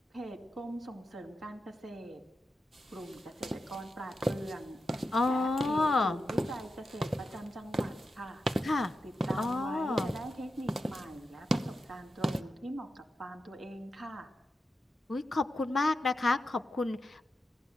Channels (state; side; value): normal; both; correlation 0.89